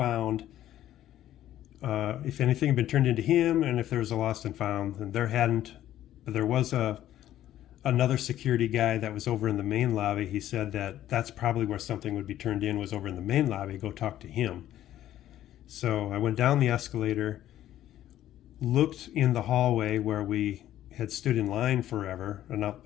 if anything had been turned into him, and if there was a lost and found. And there hadn't, but there was another security guy that was over in the main lobby. He said that that's probably where something would be turned in, was over in the main lobby. Go talk to him. So I went down the escalator, looked in the hallway where we had stood in line forever, and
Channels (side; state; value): right; quieter; 12.7 dB